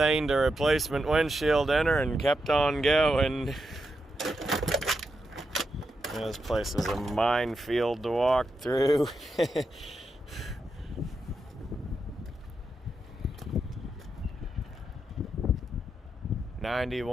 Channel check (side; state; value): both; normal; correlation 0.85